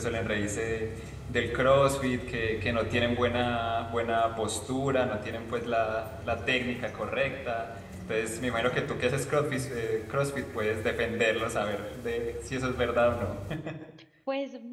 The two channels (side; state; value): both; identical; correlation 1.00